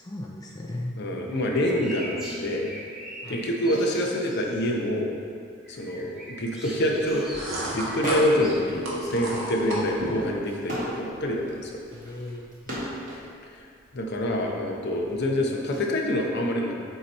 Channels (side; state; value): both; normal; correlation 0.39